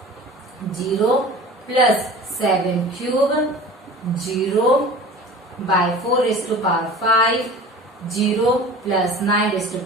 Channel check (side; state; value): both; normal; correlation 0.40